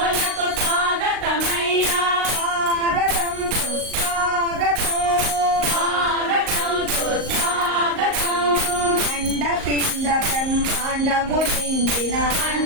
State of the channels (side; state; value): left; late; 38 ms